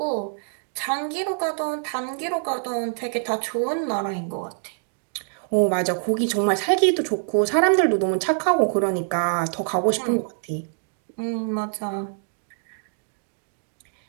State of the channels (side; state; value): left; silent; digital silence